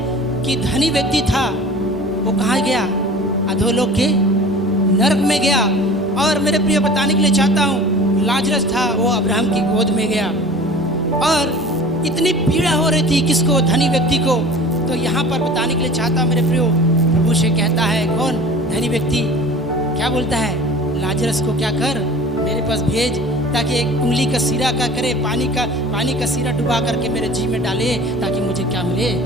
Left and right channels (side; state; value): both; normal; correlation 0.42